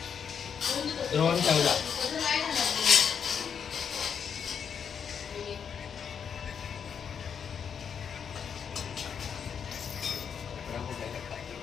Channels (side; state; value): right; quieter; 7.3 dB